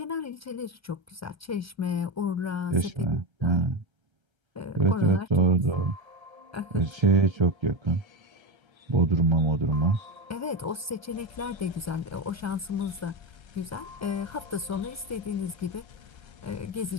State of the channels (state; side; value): late; left; 1.3 ms